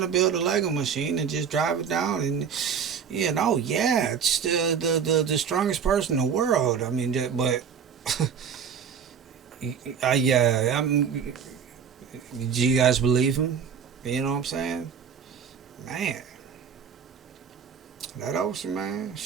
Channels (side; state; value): left; quieter; 7.1 dB